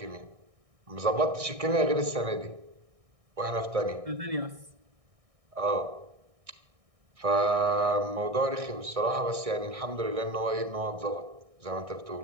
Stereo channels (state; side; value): late; left; 1.6 ms